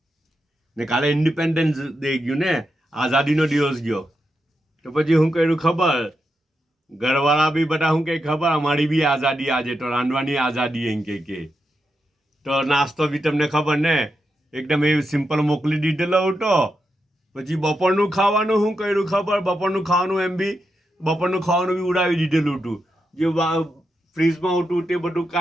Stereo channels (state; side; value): normal; both; correlation 0.86